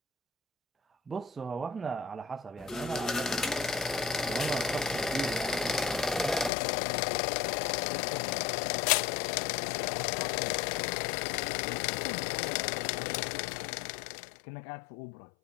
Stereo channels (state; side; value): drops out; right; at 6.5 s